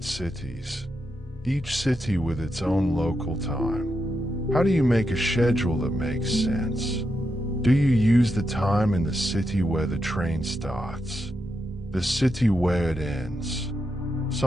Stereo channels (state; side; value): normal; both; correlation 0.85